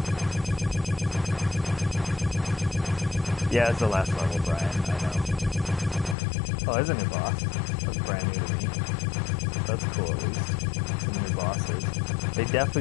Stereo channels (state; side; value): drops out; right; at 6.2 s